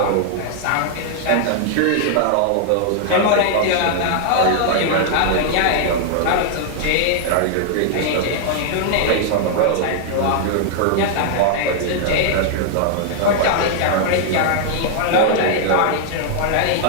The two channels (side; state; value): both; different; correlation -0.01